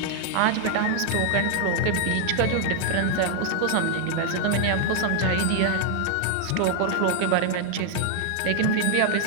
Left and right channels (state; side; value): different; both; correlation 0.00